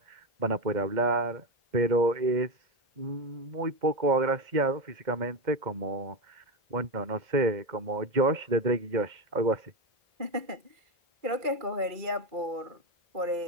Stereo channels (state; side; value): late; left; 2.1 ms